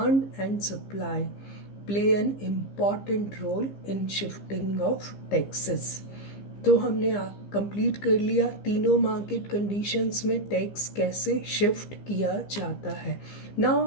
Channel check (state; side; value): late; right; 15 ms